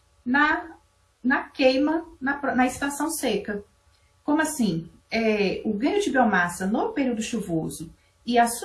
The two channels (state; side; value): identical; both; correlation 1.00